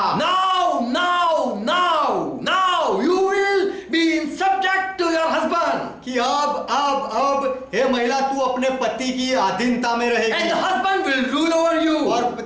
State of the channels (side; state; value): both; identical; correlation 1.00